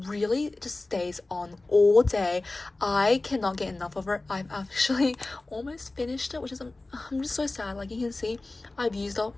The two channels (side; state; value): right; quieter; 3.1 dB